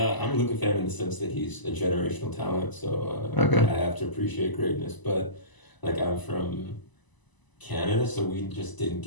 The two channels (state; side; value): late; right; 1.0 ms